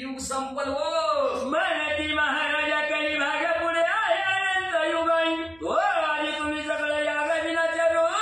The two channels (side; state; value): right; noise; hum, 28 dB below the sound